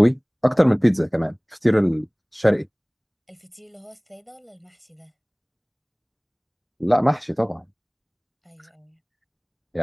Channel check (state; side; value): identical; both; correlation 1.00